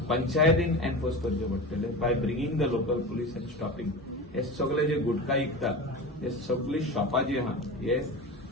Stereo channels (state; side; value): normal; both; correlation 0.29